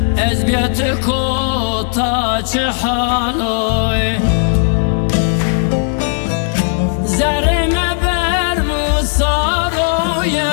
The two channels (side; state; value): right; silent; 63 dB below the other